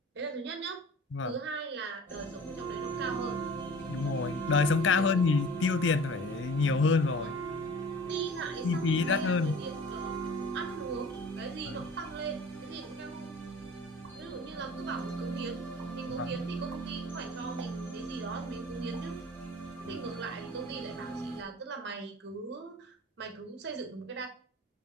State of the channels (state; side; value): normal; both; correlation 0.44